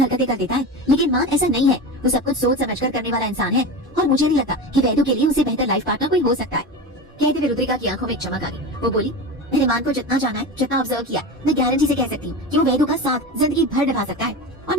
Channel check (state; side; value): normal; both; correlation 0.26